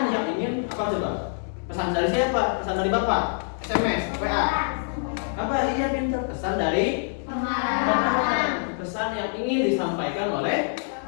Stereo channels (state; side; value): silent; right; 61 dB below the other